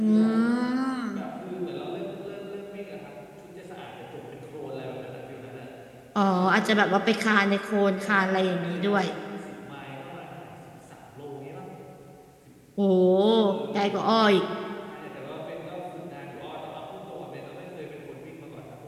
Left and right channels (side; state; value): both; identical; correlation 1.00